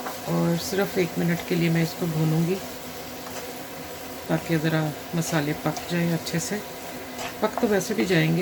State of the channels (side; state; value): both; identical; correlation 1.00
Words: और सिर्फ 1 मिनट के लिए मैं इसको भूनूँगी, ताकि ज़रा मसाले पक जाए अच्छे से। पक तो वैसे भी